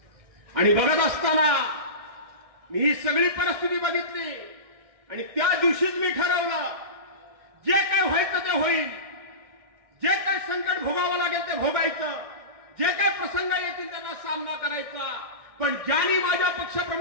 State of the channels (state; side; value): late; left; 1.6 ms